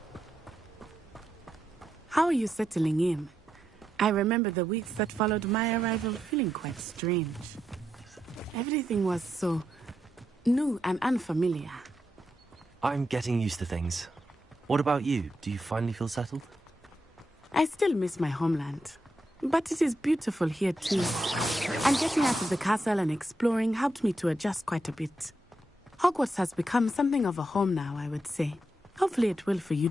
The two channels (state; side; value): normal; both; correlation 0.84